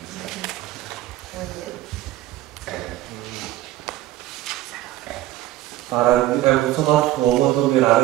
Muy bien. Para mim é muito mais cômodo mirar o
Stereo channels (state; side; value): quieter; left; 15.0 dB